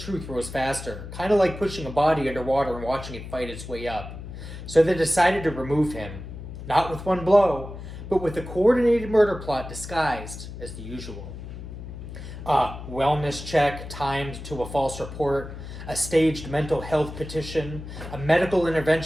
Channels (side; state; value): left; noise; hum, 11 dB below the sound